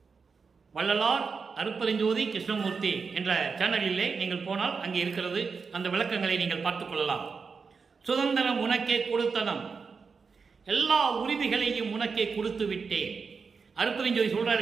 வள்ளலார் அருப்பெருஞ்சோதி கிருஷ்ணமூர்த்தி என்ற சேனலிலே நீங்கள் போனால் அங்கே இருக்கிறது. அந்த விளக்கங்களை நீங்கள் பார்த்துக் கொள்ளலாம். சுதந்திரம் உனக்கே கொடுத்தனம், எல்லா உரிமைகளையும் உனக்கே கொடுத்து விட்டேன். அருப்பெருஞ்சோதி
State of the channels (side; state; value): left; quieter; 5.2 dB